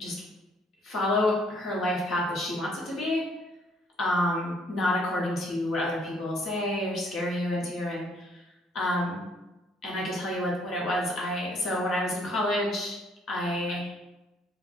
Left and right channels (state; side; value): normal; both; correlation 0.64